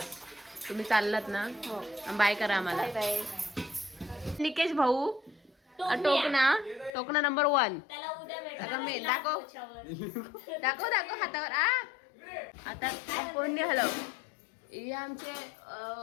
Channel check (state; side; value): drops out; right; at 6.9 s